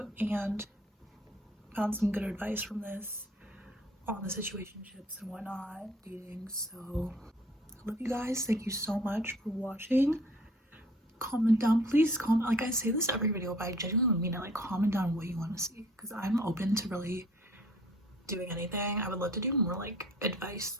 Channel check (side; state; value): both; normal; correlation 0.55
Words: and found some good advice from this on the situationships and whatnot, dating. So I love you guys. Thank you so much for watching. Comment down, please comment. Like I say this every video, but I genuinely mean it. Like, comment down what you want to see, because I'm open to really doing anything. I would love to do more like advice,